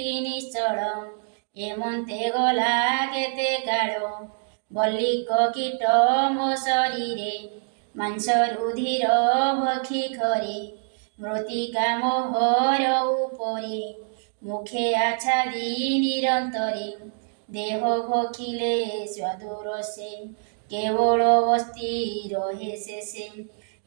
নিশ্চল হেমন্তে গলা কেতে কাଳ বল্লিক কীট ମୋ ଶରୀରେ ମାଂସ ରୁଧିର ଭକ୍ଷି ଖରେ ମୃତ୍ତିକା ମୋହର ଉପରେ ମୁଖେ ଆଚ୍ଛାଦି ନିରନ୍ତରେ ଦେହ ଭକ୍ଷିଲେ ସ୍ୱାଦୁ ରସେ କେବଳ ଅସ୍ଥି ରହେ ଶେଷେ।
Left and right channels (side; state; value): left; silent; digital silence